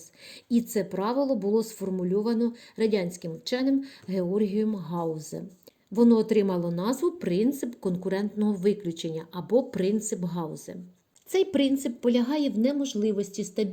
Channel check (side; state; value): both; identical; correlation 1.00